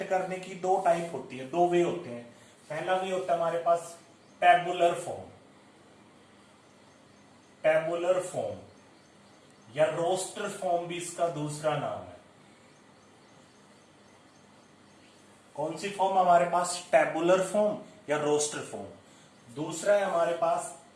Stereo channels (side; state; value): both; identical; correlation 1.00